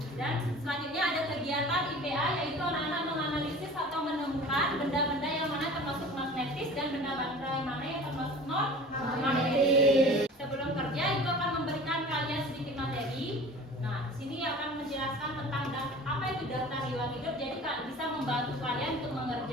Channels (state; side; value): normal; both; correlation 0.41